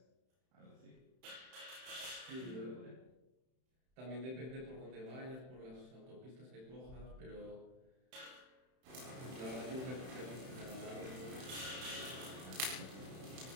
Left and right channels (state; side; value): late; left; 31 ms